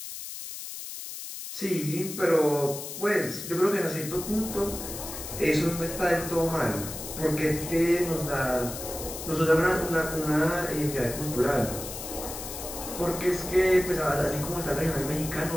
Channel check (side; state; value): left; noise; hiss, 9 dB below the sound